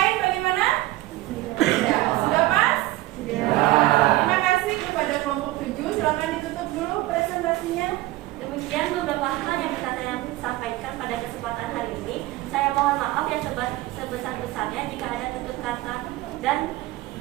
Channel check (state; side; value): quieter; left; 17.8 dB